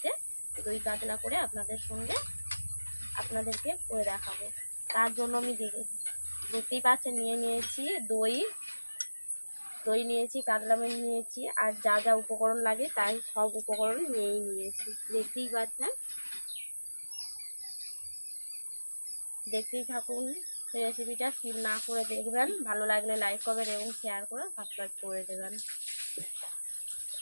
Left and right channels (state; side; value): inverted; both; correlation -1.00